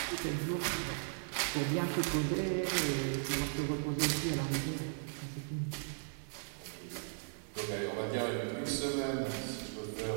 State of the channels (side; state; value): left; silent; 53 dB below the other